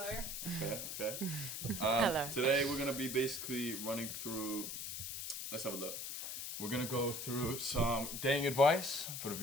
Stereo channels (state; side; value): noise; left; hiss, 5 dB below the sound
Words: Okay. Hello. Today we're going to be basically running through, let's have a look. We're going to go through some dating advice for the